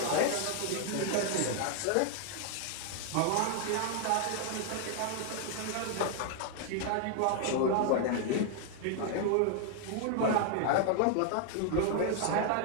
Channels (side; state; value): both; different; correlation 0.00